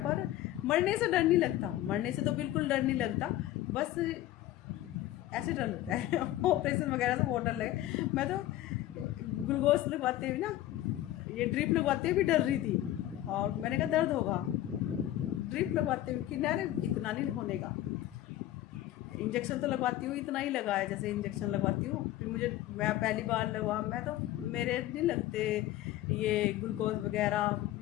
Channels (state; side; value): quieter; right; 14.3 dB